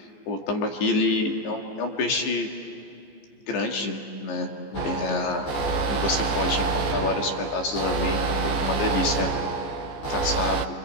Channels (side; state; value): right; late; 14 ms